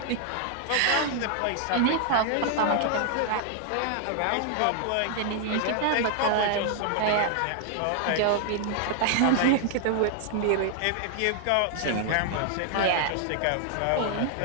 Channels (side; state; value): both; different; correlation 0.00